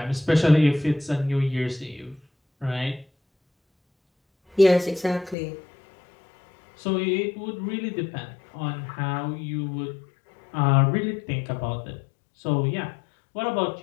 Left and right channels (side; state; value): right; drops out; at 5.4 s